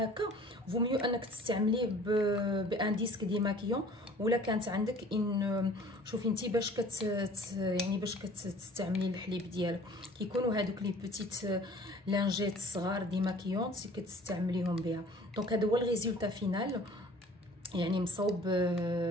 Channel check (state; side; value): normal; both; correlation 0.49